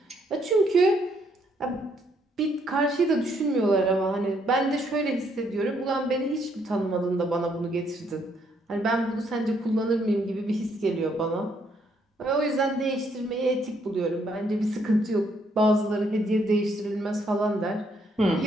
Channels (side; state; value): both; normal; correlation 0.71